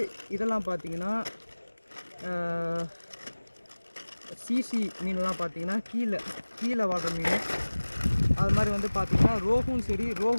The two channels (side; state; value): both; inverted; correlation -1.00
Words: இதெல்லாம் பார்த்திங்கன்னா சிசி மீன்லாம் பார்த்திங்கன்னா கீழே வாழ்கிற மீன். அது மாதிரி வந்து பார்த்திங்கன்னா ரோகும் சரி,